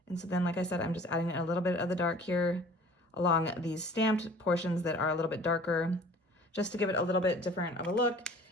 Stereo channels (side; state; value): both; normal; correlation 0.49